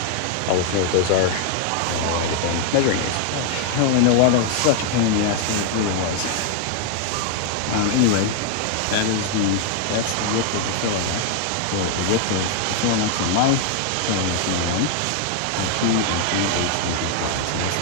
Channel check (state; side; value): different; both; correlation 0.00